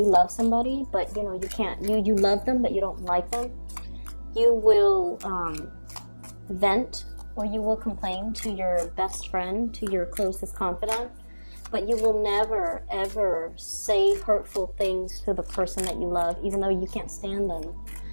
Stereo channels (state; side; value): inverted; both; correlation -1.00